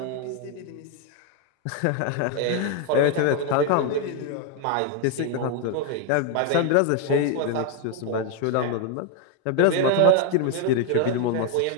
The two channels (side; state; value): both; different; correlation 0.01